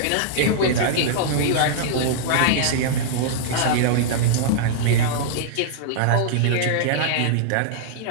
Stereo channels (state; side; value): different; both; correlation -0.02